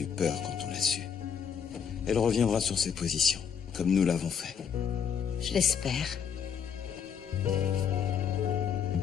peur quand on l'a su. Elle reviendra sur ses positions, comme nous l'avons fait. Je l'espère.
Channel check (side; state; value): right; quieter; 7.4 dB